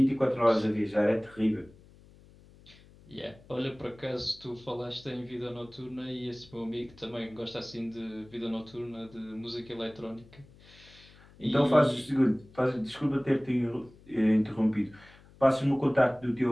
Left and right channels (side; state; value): left; noise; hum, 25 dB below the sound